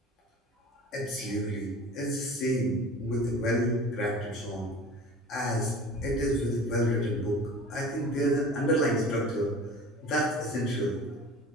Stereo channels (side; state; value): both; normal; correlation 0.40